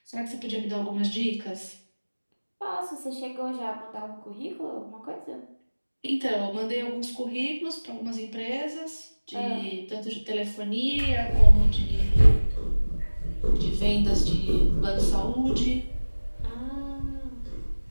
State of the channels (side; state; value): both; inverted; correlation -1.00